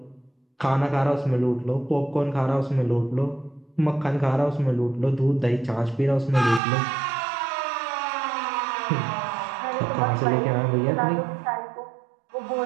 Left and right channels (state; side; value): drops out; left; at 6.6 s